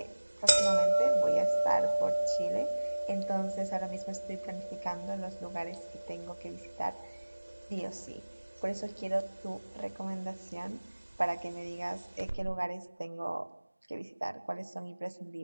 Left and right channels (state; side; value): inverted; both; correlation -1.00